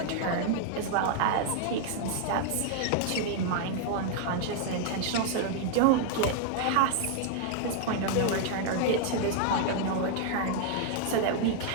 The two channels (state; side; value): different; both; correlation 0.00